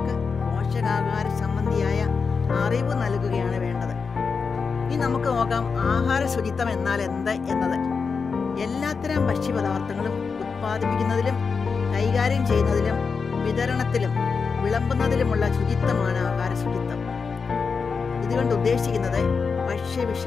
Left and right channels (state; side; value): quieter; right; 5.2 dB